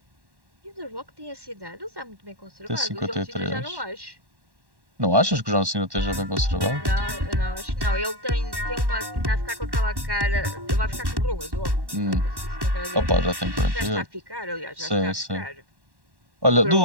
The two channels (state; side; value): late; left; 1.1 ms